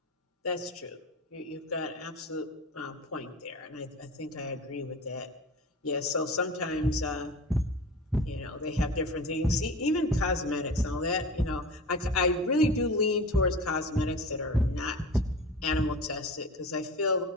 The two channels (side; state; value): both; normal; correlation 0.35